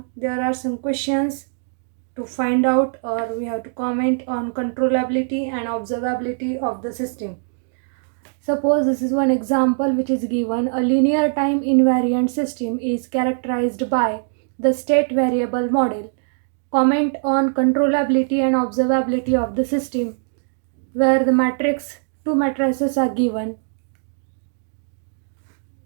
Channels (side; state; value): left; silent; digital silence